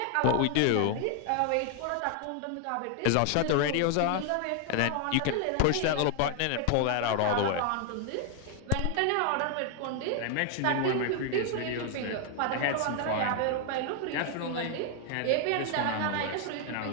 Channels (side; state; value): both; different; correlation 0.00